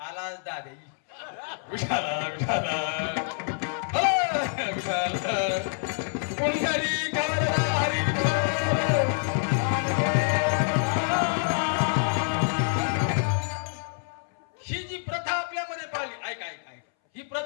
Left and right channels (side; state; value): right; silent; 60 dB below the other